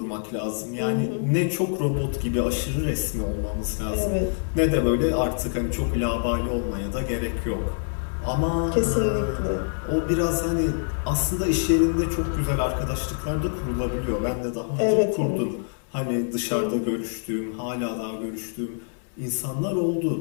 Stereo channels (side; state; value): right; silent; digital silence